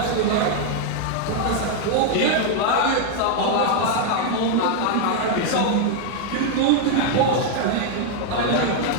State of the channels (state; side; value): different; both; correlation 0.00